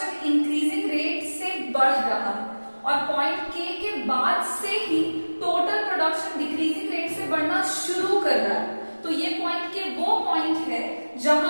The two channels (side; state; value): both; inverted; correlation -1.00